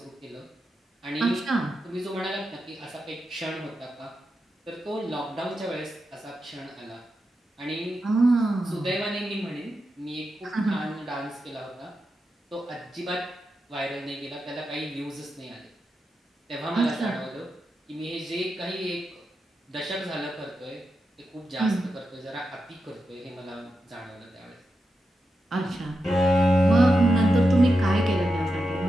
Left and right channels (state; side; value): normal; both; correlation 0.88